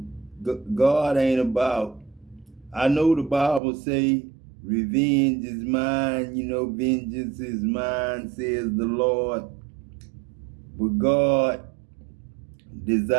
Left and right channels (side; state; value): left; drops out; at 3.6 s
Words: God ain't about, I know the Bible say, revenge is mine, you know, vengeance is mine, says the Lord. But God